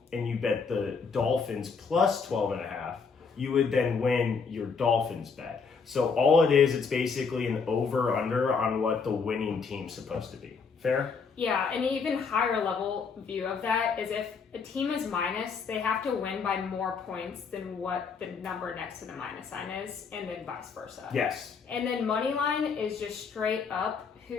and you bet the Dolphins plus 12.5, you would then win your Dolphins bet. So all it is, it's basically an over-under on what the winning team's supposed to be. Fair? Yeah, an even higher level view of that is if a team is minus, they have to win by more points than what the number next to the minus sign is, and then vice versa. Yes. And then money line is just straight up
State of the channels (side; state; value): right; quieter; 5.4 dB